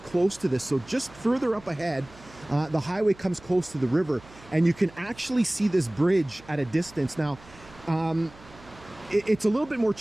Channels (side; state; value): right; noise; hum, 22 dB below the sound